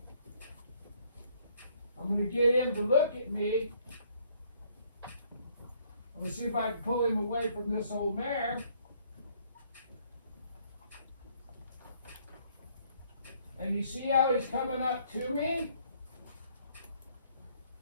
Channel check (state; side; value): inverted; both; correlation -0.65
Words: I'm going to get him to look at me. I'm going to see if I can pull him away from this old mare. And you see how he's coming up to me?